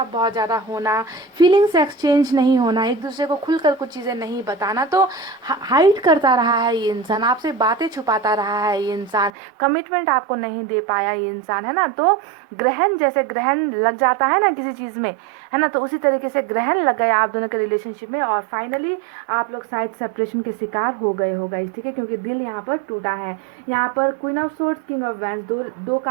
बहुत ज़्यादा होना, फीलिंग्स एक्सचेंज नहीं होना, एक दूसरे को खुलकर कुछ चीज़ें नहीं बताना। तो हाइड करता रहा है ये इंसान, आपसे बातें छुपाता रहा है ये इंसान, कमिटमेंट आपको नहीं दे पाया ये इंसान, है ना। तो ग्रहण, जैसे ग्रहण लग जाता है ना किसी चीज़ में, है ना, तो उसी तरीके से ग्रहण लग गया आप दोनों के रिलेशनशिप में, और फाइनली आप लोग शायद सेपरेशन के शिकार हो गए हो गाइस, ठीक है, क्योंकि दिल यहाँ पर टूटा है। यहाँ पर queen of swords, king of wands, दो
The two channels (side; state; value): left; drops out; at 9.3 s